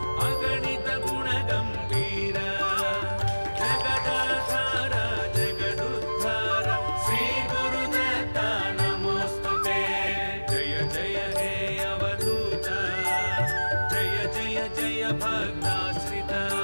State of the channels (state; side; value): inverted; both; correlation -1.00